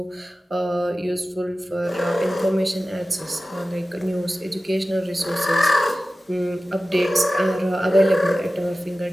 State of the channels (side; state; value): both; normal; correlation 0.95